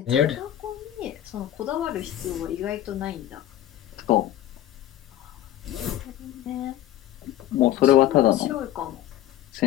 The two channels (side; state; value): right; quieter; 12.7 dB